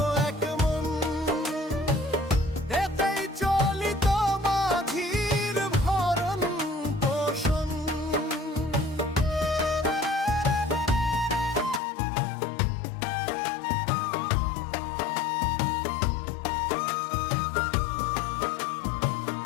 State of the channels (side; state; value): right; drops out; at 11.8 s